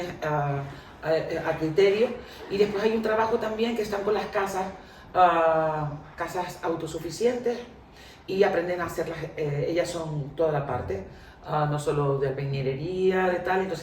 a criterio, y después hay un trabajo también que están con las casas autosuficientes y aprenden a hacerlas, ellas son toda la parte, no solo de albañilería, de tal,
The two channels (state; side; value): identical; both; correlation 1.00